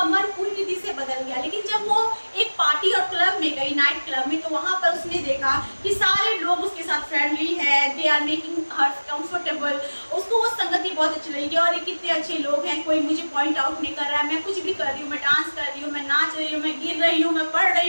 मन पूरी रीति से बदल गया। लेकिन जब वो एक पार्टी और क्लब में गई, नाइट क्लब में, तो वहां पर उसने देखा कि सारे लोग उसके साथ फ्रेंडली है, they are making her comfortable. उसको वो संगति बहुत अच्छी लगी और ये कितने अच्छे लोग हैं, कोई मुझे पॉइंट आउट नहीं कर रहा है, मैं कुछ भी कर रही हूँ, मैं डांस कर रही हूँ, मैं नाच रही हूँ, मैं गिर रही हूँ, मैं पढ़ रही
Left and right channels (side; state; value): both; inverted; correlation -1.00